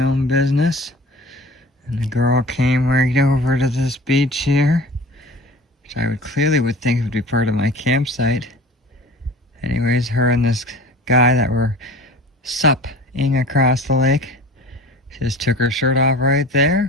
own business, and the girl came right over to this beach here, which I would think would be part of my campsite. Anyways, her and this guy that were supping across the lake, she just took her shirt off right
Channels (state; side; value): normal; both; correlation 0.40